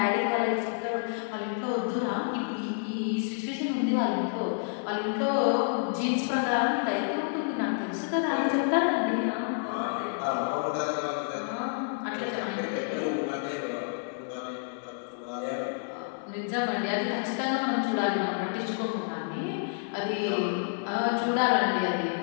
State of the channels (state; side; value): silent; right; 58 dB below the other